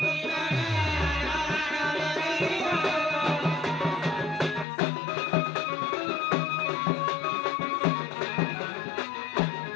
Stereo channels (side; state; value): right; drops out; at 4.7 s